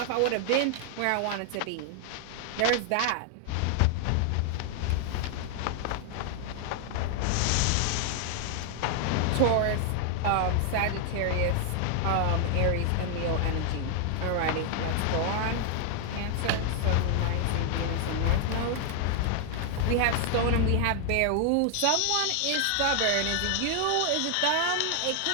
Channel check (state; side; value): different; both; correlation 0.00